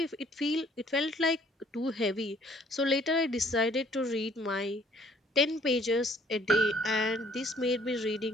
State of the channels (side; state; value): both; normal; correlation 0.60